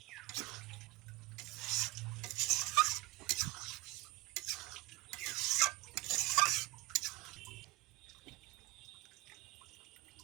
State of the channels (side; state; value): left; quieter; 21.4 dB